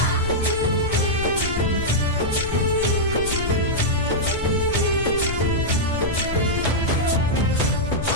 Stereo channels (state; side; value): noise; left; rumble, 7 dB below the sound